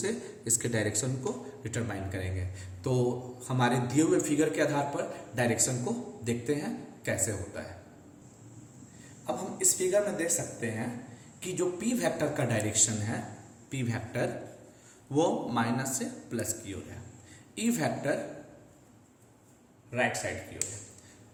इसके डायरेक्शन को डिटरमाइन करेंगे। तो हमारे दिए हुए फिगर के आधार पर डायरेक्शन को देखते हैं कैसे होता है। अब हम इस फिगर में देख सकते हैं कि जो P वेक्टर का डायरेक्शन है, P वेक्टर वो माइनस से प्लस की ओर है, E वेक्टर राइट साइड की ओर है।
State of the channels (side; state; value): both; identical; correlation 1.00